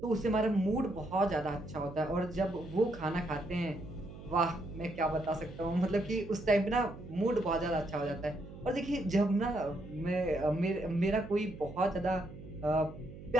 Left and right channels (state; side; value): noise; right; hum, 14 dB below the sound